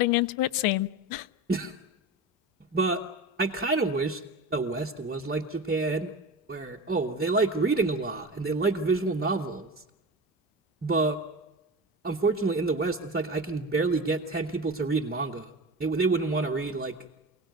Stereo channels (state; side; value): normal; both; correlation 0.28